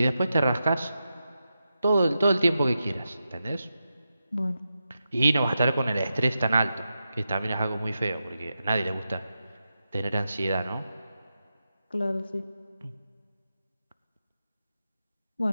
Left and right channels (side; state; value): both; inverted; correlation -0.89